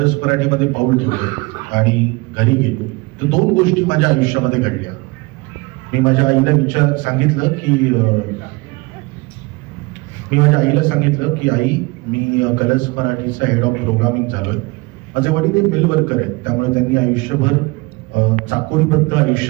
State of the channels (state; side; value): quieter; left; 25.2 dB